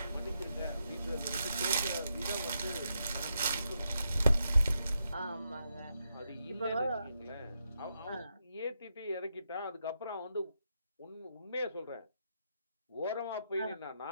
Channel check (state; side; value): inverted; both; correlation -0.82